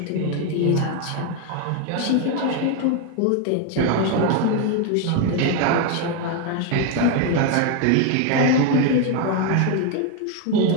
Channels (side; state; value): both; different; correlation 0.01